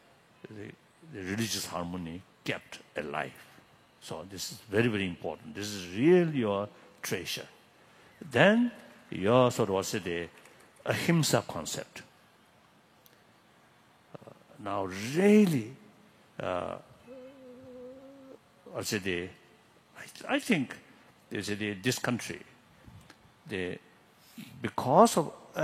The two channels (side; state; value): both; identical; correlation 1.00